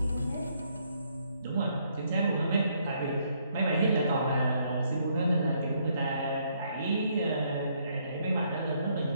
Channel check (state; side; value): inverted; both; correlation -0.71